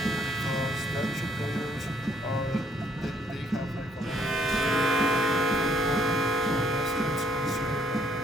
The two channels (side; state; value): both; normal; correlation 0.66